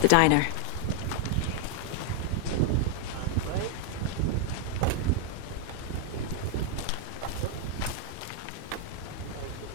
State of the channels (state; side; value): different; both; correlation 0.00